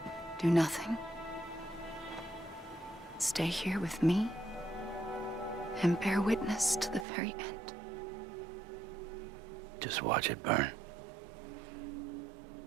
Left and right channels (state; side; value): drops out; left; at 7.1 s